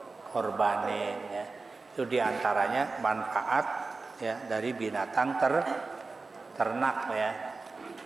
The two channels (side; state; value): left; quieter; 3.9 dB